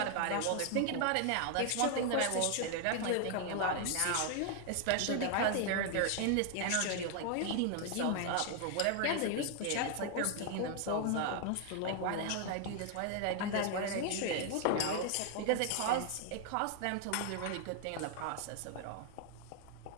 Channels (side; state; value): both; different; correlation 0.00